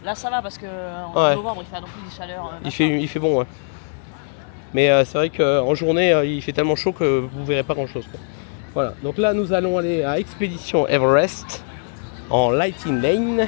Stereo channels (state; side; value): silent; right; 65 dB below the other